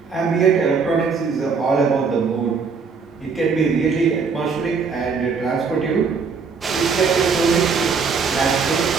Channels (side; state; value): left; quieter; 5.3 dB